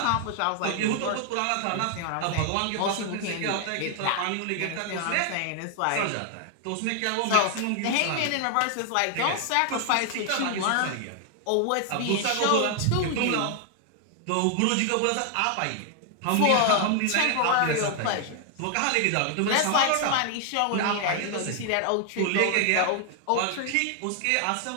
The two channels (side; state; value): both; different; correlation 0.00